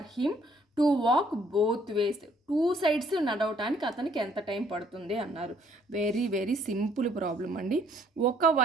him to walk both ways. 2 sides నడవటానికి అతనికి ఎంత టైం పడుతుంది అన్నారు. వెరీ సింపుల్ ప్రాబ్లం అండి.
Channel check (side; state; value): both; normal; correlation 0.64